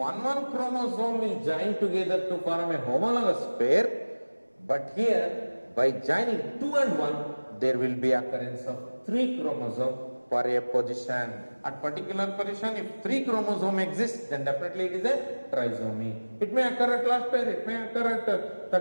chromosome will join together to form a homologous pair. But here, by joining 2 and 1, there will be occurrence of 3 chromosomes for a position. At particular position, if 3 chromosomes exist, then definitely it is a trisomy. It may occur at last pair, it may occur at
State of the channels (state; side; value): inverted; both; correlation -1.00